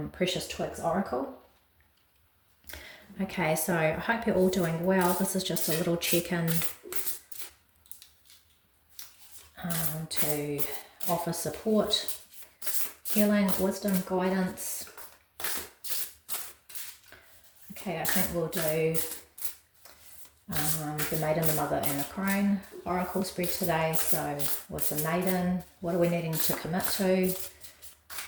Precious Twigs Oracle. Okay, so I hope you're all doing well. This is just a little check-in to offer support, healing, wisdom, guidance. Okay, I think we'll do the Maiden, the Mother and the Crone Oracle spread today. So with the Maiden, what are we needing to commit to?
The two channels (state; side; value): identical; both; correlation 1.00